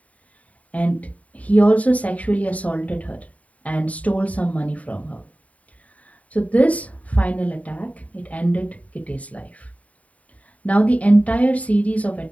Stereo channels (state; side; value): late; right; 0.069 ms